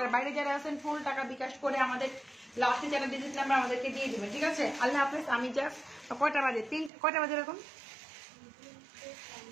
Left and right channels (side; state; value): left; drops out; at 6.9 s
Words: বাইরে যারা আছেন ফুল টাকা বিকাশ করে আমাদের লাস্টে যারা ডিজিট নাম্বার আমাদেরকে দিয়ে দেবেন, ঠিক আছে? আল্লাহ হাফিজ। আমি জাস্ট কয়টা বাজে, কয়টা বাজে এরকম